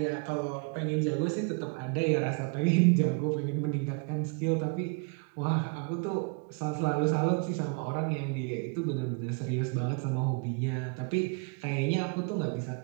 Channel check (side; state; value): left; quieter; 35.0 dB